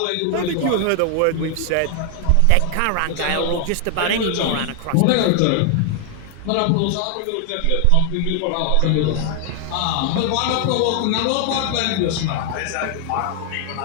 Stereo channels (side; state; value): both; different; correlation 0.00